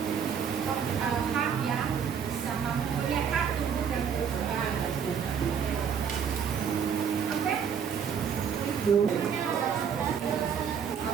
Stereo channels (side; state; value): left; quieter; 7.3 dB